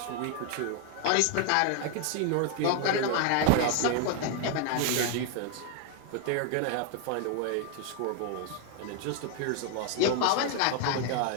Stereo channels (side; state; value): both; different; correlation 0.01